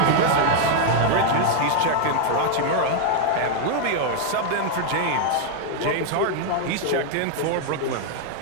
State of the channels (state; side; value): different; both; correlation 0.00